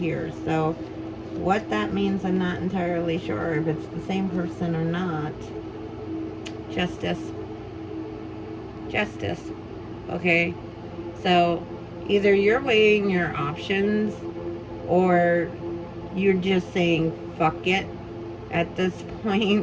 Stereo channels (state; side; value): identical; both; correlation 1.00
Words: here. So what that means, I'm not entirely sure if it's the same person or not. Justice. Justice. Okay. So either you're weighing your options or you're just saying fuck it at this